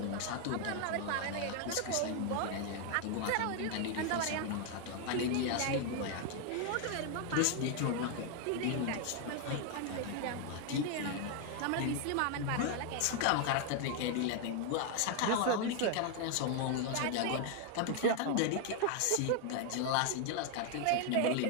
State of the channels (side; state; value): both; different; correlation 0.00